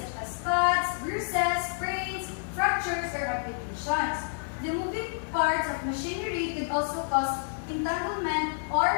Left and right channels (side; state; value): right; silent; 59 dB below the other